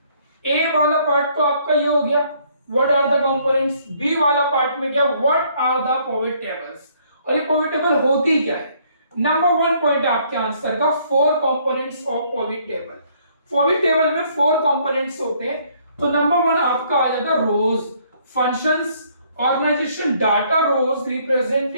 ए वाला पार्ट तो आपका ये हो गया, what are the components. B वाला पार्ट में क्या, what are the pivot tables. और ये पिवोट टेबल होती क्या है। नंबर 1 पॉइंट आपके आंसर का, four components of pivot table. Pivot table में फोर कंपोनेंट्स होते हैं। तो नंबर 1 आपका आ जाता है rows, functions, organization, data. Rows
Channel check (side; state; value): both; inverted; correlation -0.65